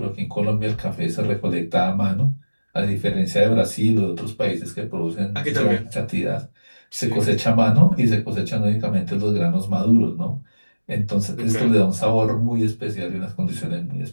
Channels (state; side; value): inverted; both; correlation -1.00